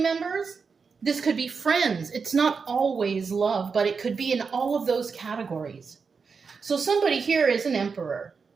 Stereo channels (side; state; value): left; quieter; 5.3 dB